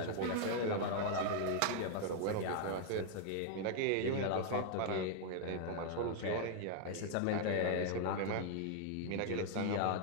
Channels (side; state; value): both; different; correlation 0.00